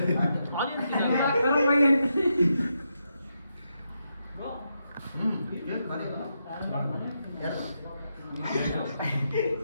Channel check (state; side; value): inverted; both; correlation -0.83